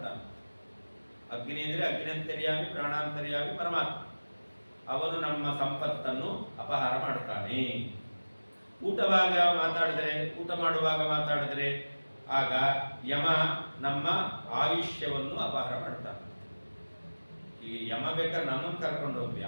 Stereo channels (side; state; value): both; inverted; correlation -1.00